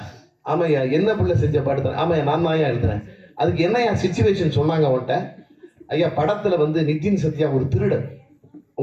ஆமையா. என்ன பிள்ளை செஞ்ச பாட்டு தான்? ஆமையா, நான் தான் எழுதுறேன். அதுக்கு என்னையா சிச்சுவேஷன் சொன்னாங்க அவன்கிட்ட? ஐயா, படத்துல நிதின் சத்யா ஒரு திருடன்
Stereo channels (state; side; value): identical; both; correlation 1.00